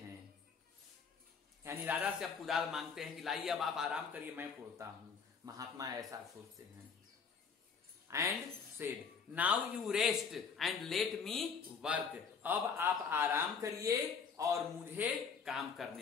यानी राजा से अब कुदाल मांगते हैं कि लाइए अब आप आराम करिए, मैं कोड़ता हूं। महात्मा ऐसा सोचते हैं। And said now you rest and let me work, अब आप आराम करिए और मुझे काम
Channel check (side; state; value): right; quieter; 5.9 dB